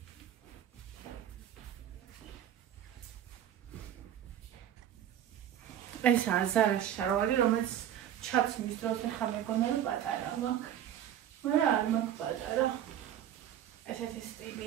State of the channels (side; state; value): left; quieter; 10.7 dB